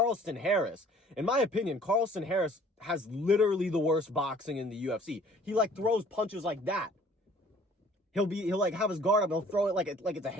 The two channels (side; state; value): both; normal; correlation 0.54